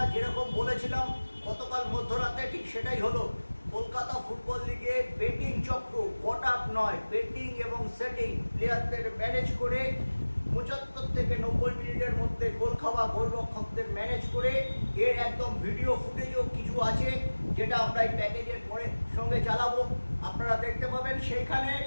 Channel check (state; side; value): inverted; both; correlation -1.00